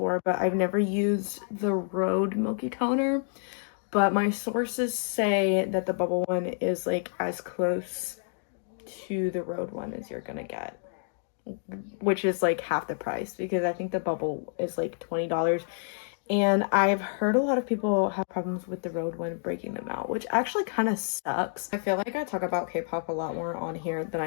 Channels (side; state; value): right; silent; digital silence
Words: but I've never used the Rhode milky toner, but my sources say that the bubble one is like as close to the Rhode one as you're gonna get, which is like half the price because I think the bubble is like $20. And I've heard a lot of people have problems with the Rhode one breaking them out, which actually kind of sucks. I feel like I talk about K-pop a lot more on here than